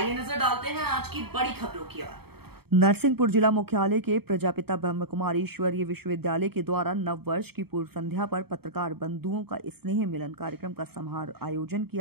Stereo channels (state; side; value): late; left; 0.96 ms